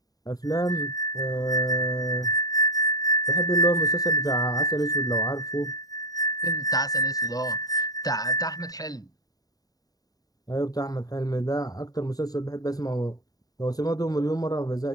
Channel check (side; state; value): right; late; 0.18 ms